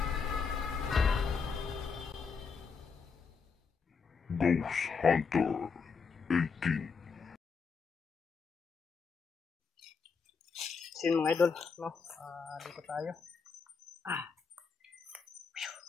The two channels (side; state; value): right; quieter; 5.4 dB